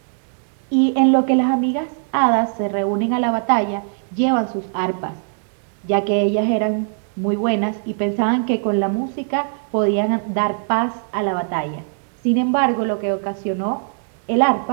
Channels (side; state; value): left; silent; digital silence